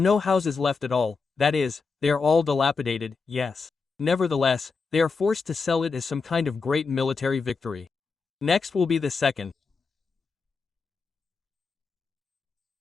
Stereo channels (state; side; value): quieter; right; 4.7 dB